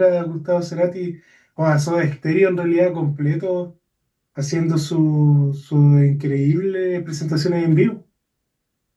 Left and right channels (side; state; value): both; identical; correlation 1.00